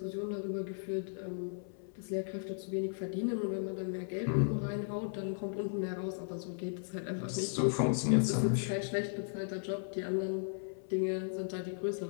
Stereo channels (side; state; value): right; silent; 54 dB below the other